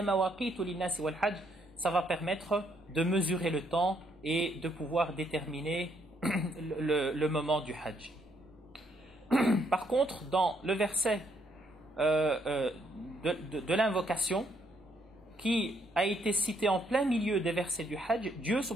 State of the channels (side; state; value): both; normal; correlation 0.72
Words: مَوَاقِيتُ لِلنَّاسِ وَالْحَجِّ. Ça va permettre de mesurer le temps et de pouvoir déterminer le moment du Hajj. Par contre, dans le verset de l'invocation, qui a été cité en plein milieu des versets du Hajj, Dieu